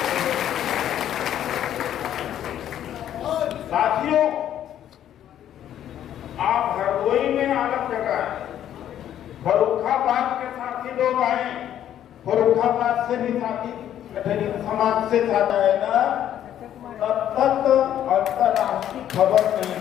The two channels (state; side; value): quieter; right; 10.9 dB